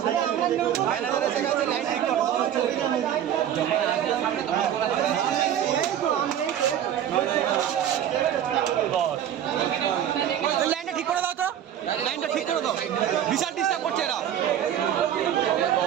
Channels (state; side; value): quieter; left; 10.3 dB